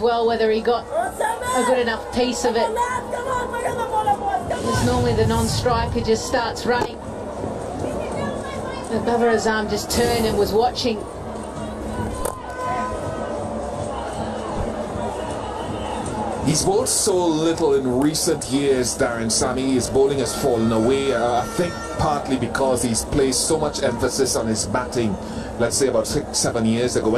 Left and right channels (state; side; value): identical; both; correlation 1.00